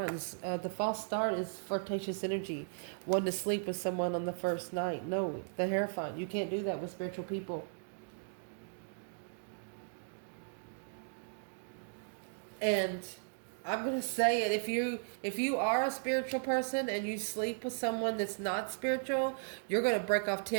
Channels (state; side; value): silent; left; digital silence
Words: The false start is flirtatious energy. Wanting to sleep with someone on the first night. No, the Hierophant. You can't do that with spiritual people. And I'm going to say it. If you are a spiritual person and you sleep with someone that's not spiritual, you're going to break off